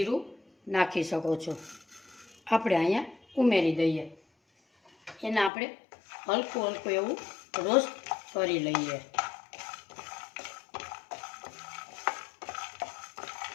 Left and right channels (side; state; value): right; drops out; at 5.5 s